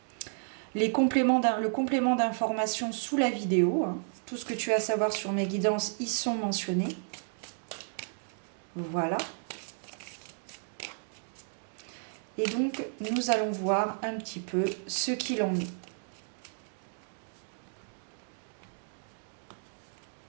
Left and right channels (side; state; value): left; silent; digital silence